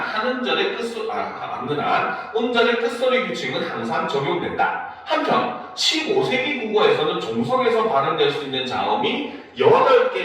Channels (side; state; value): both; identical; correlation 1.00